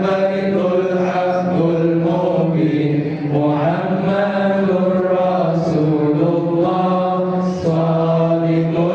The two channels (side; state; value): both; identical; correlation 1.00